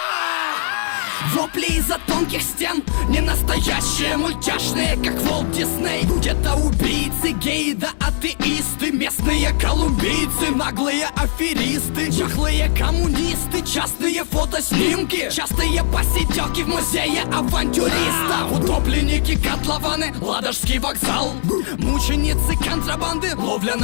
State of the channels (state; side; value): silent; right; digital silence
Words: Вопли из-за тонких стен, не настоящие, мультяшные, как Волт Дисней. Где-то убийцы, геи да атеисты, местные колумбийцы, наглые аферисты, чахлые коммунисты, частные фотоснимки, частые посиделки в музее авантюристов. Утопленники, котлованы, Ладожский вокзал, мученицы контрабанды, ловля